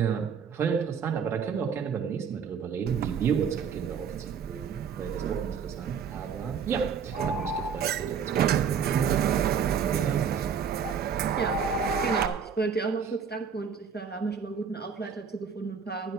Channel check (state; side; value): quieter; left; 6.8 dB